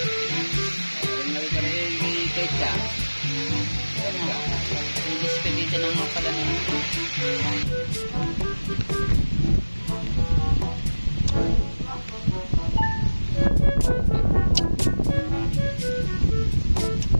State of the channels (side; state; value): both; inverted; correlation -1.00